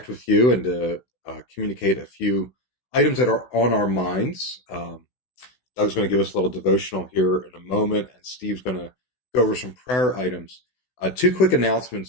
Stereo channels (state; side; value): late; right; 16 ms